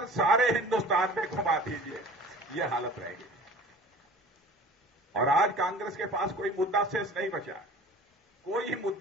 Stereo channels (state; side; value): normal; both; correlation 0.43